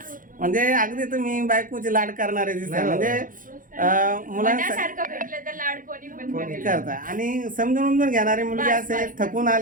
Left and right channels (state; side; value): late; left; 0.39 ms